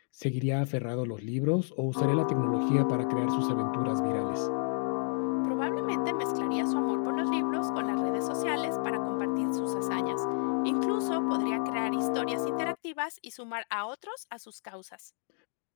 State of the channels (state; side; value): silent; right; digital silence